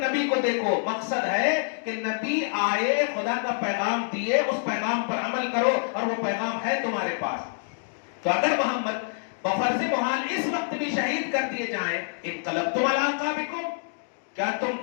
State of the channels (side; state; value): right; silent; digital silence